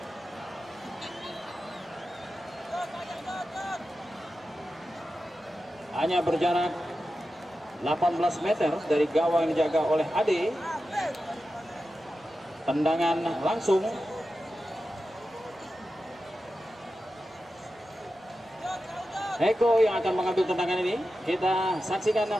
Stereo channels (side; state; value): both; normal; correlation 0.92